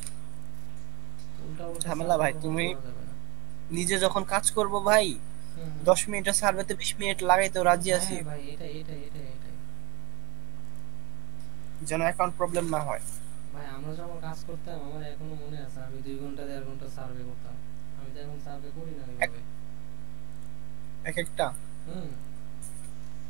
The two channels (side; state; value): left; quieter; 26.5 dB